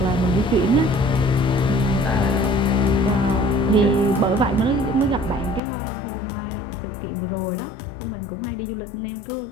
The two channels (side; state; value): right; drops out; at 5.6 s